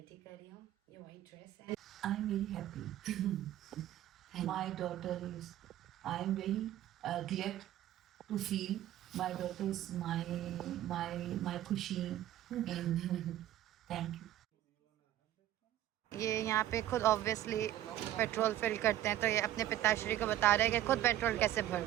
कर रही हूँ। ये वाइट ड्रेस है। I am very happy my daughter is I am very glad to feel my daughter is my खुशी एंड थैंक यू। ये यहाँ पे खुद ऑब्वियसली पेट्रोल फिल करते हैं तो ये अपने पिताश्री को बता रहे हैं कि खुद पेट्रोल कैसे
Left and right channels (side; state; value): left; quieter; 13.1 dB